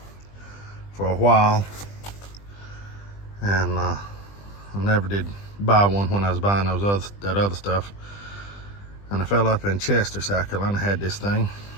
for a while, and I never did buy one when I was buying that other stuff. And I fell up in Chester, South Carolina, had this thing,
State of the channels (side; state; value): right; late; 20 ms